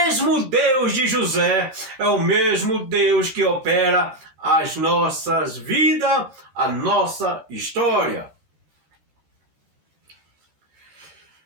Deus de José é o mesmo Deus que opera as nossas vidas, a nossa história.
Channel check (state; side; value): late; left; 14 ms